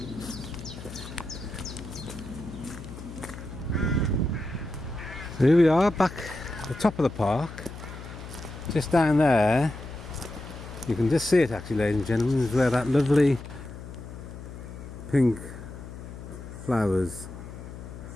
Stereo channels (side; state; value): left; noise; hum, 12 dB below the sound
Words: So here we are back at the top of the park. Just down there, you can just see it actually, ladies and gentlemen, is where that lovely pink flowers